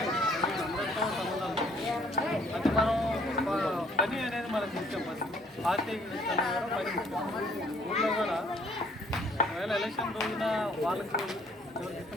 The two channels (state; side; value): normal; both; correlation 0.61